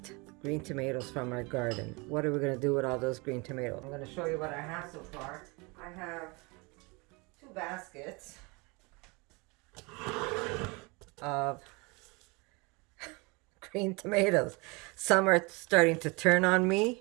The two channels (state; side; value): quieter; left; 27.9 dB